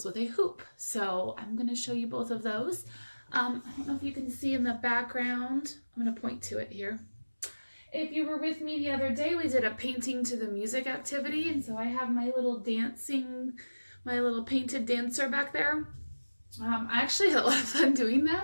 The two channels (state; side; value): inverted; both; correlation -1.00